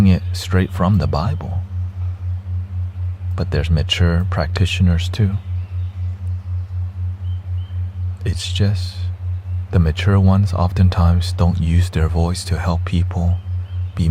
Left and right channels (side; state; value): both; identical; correlation 1.00